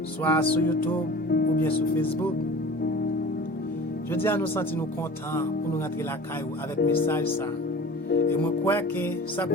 soit sur YouTube ou bien sur Facebook. Je dis à nous sentir nous contents pour nous rentrer la caillou avec message ça. Et moi crois que ça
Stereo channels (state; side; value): normal; both; correlation 0.40